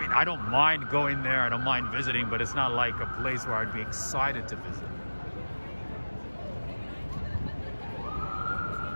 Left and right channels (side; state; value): both; inverted; correlation -1.00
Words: I don't mind going there, I don't mind visiting, but it's not like a place where I'd be excited to visit.